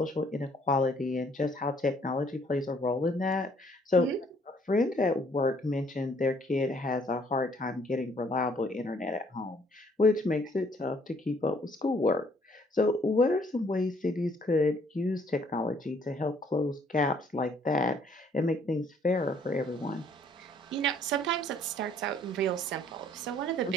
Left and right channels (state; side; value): normal; both; correlation 0.63